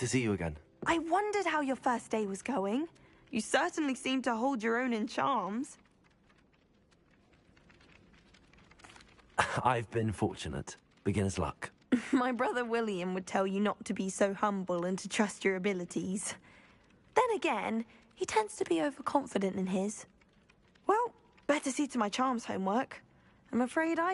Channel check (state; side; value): identical; both; correlation 1.00